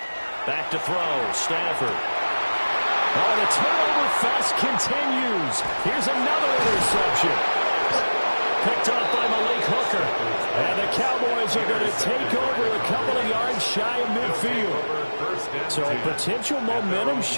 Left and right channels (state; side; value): inverted; both; correlation -1.00